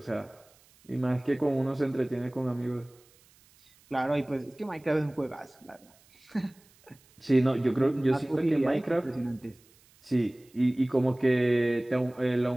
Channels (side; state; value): right; noise; hiss, 30 dB below the sound